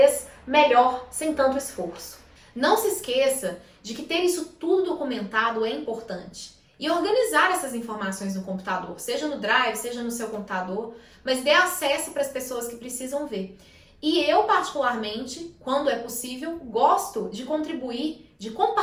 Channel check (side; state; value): both; identical; correlation 1.00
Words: melhor, sem tanto esforço. Não se esqueça de que ter isso tudo documentado é importante. E organizar essas informações no computador, seja no Drive, seja no seu computador, mas dê acesso para as pessoas que precisam ver. E eu, particularmente, quando é possível, gosto de contribuir, de